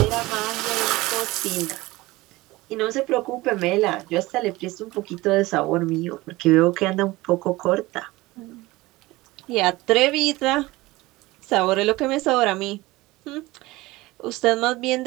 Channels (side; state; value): left; quieter; 20.0 dB